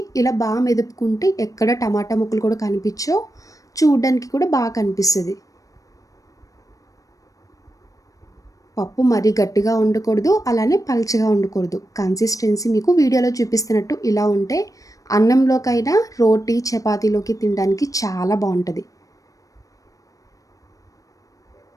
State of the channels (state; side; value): late; right; 0.16 ms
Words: ఇలా మెదుపుకుంటే ఎక్కడ టమాటా ముక్కలు కూడా కనిపించవు. చూడ్డానికి కూడా కనిపిస్తది. పప్పు మరీ గట్టిగా ఉండకూడదు. అలానే పల్చగా ఉండకూడదు. కన్సిస్టెన్సీ మీకు వీడియోలో చూపిస్తున్నట్టు ఇలా ఉంటే అన్నంలోకైనా, రోటీ, చపాతీలోకి తినడానికి చాలా బావుంటది.